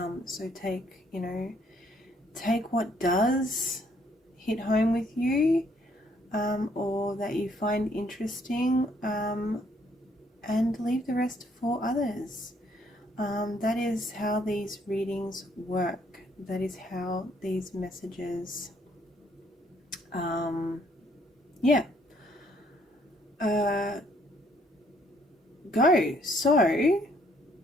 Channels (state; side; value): normal; both; correlation 0.67